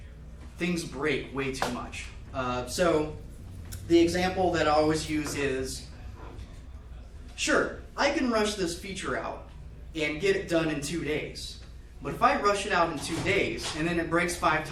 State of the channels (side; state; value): both; identical; correlation 1.00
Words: things break way too much. So the example that I always use is, sure, I can rush this feature out and get it done in 2 days. But if I rush it out in 2 days and then it breaks 5